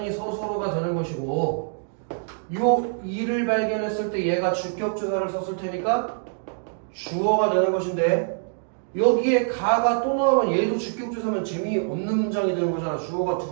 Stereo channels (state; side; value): silent; left; digital silence